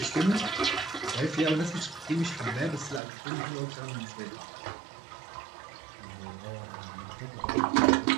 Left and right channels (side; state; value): left; drops out; at 3.0 s